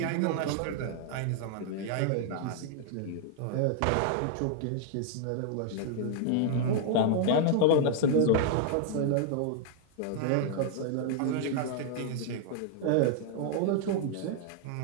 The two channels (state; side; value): different; both; correlation -0.01